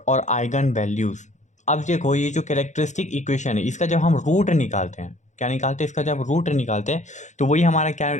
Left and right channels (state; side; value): late; right; 0.35 ms